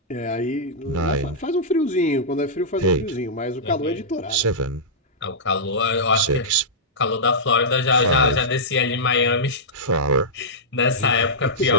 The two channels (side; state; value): both; normal; correlation -0.12